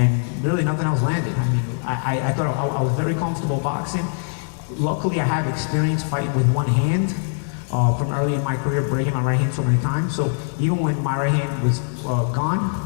really nothing else landed. I mean, I thought I was very comfortable boxing. Luckily I have experience fighting with one hand from early in my career, breaking my right hand so many times. So even when my right hand was gone,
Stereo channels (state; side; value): silent; right; 64 dB below the other